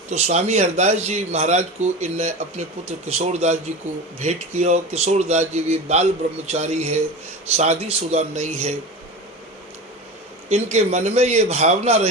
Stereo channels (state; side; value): normal; both; correlation 0.29